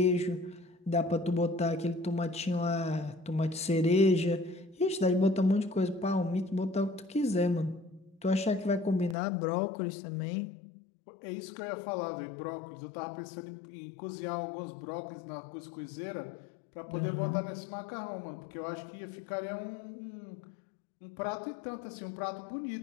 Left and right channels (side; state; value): right; drops out; at 9.2 s